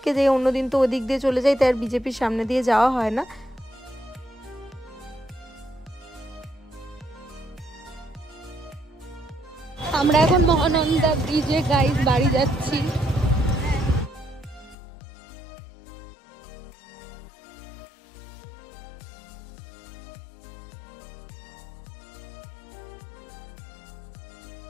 যাই, অন্যদিন তো ওদিক দিয়ে চলে যাই, তাই আর বিজেপির সামনে দিয়ে যাওয়া হয় না। আমরা এখন মহানন্দা ব্রিজে গাইজ বাড়ি যাচ্ছি।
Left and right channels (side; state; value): right; drops out; at 14.8 s